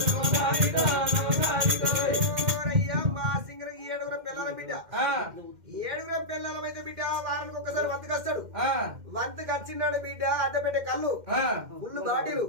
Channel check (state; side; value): late; left; 2.1 ms